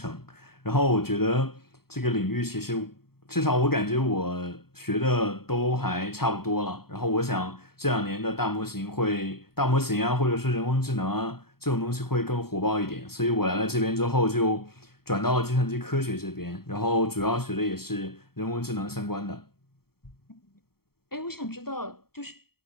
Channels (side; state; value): right; late; 0.95 ms